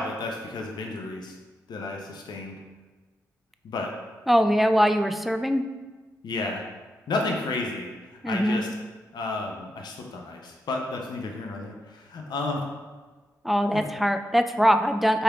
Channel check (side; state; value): both; normal; correlation 0.88